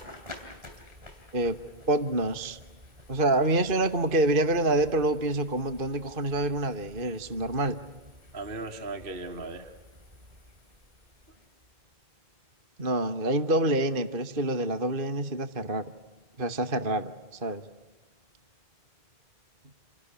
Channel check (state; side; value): late; left; 2.4 ms